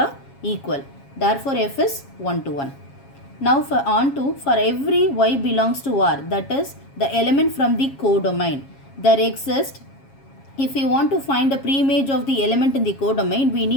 equal. Therefore f is 1-to-1. Now for every y belongs to R, that is the element from the codomain, there exists. If we want to find the pre-image of the element in the codomain, we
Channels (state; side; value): late; right; 7.3 ms